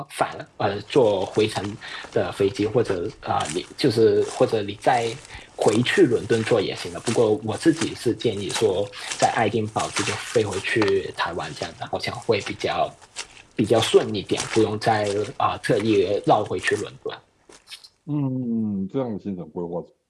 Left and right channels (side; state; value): both; identical; correlation 1.00